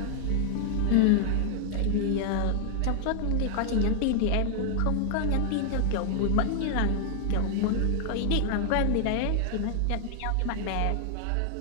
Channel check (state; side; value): different; both; correlation 0.00